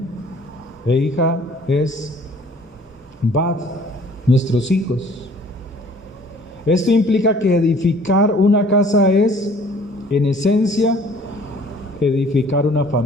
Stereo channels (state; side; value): normal; both; correlation 0.54